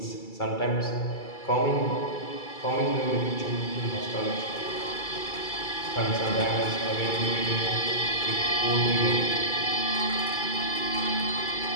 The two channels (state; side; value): late; right; 2.3 ms